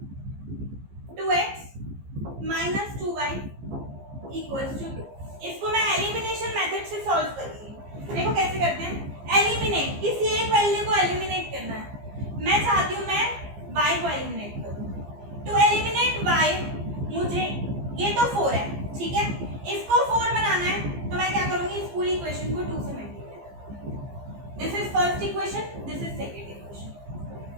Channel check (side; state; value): left; late; 15 ms